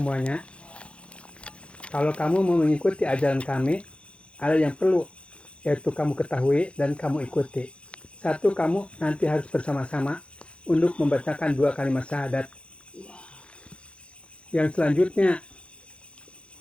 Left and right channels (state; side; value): late; right; 0.059 ms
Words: Kalau kamu mau mengikuti ajaran kami, ada yang perlu, yaitu kamu ketahui dan kamu ikuti. Satu, kamu nanti harus bersama-sama untuk membacakan 2 kalimat syahadat. Yang selanjutnya,